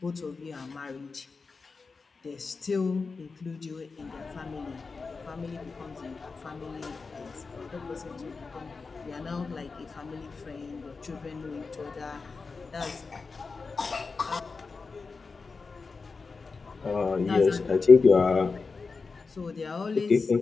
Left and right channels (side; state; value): right; quieter; 4.5 dB